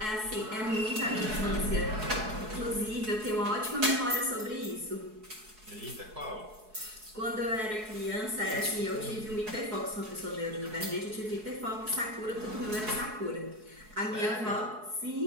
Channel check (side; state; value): left; late; 4.7 ms